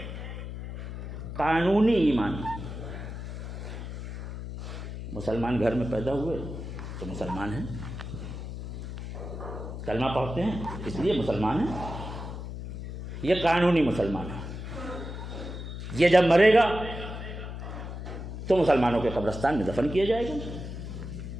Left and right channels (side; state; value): left; noise; hum, 8 dB below the sound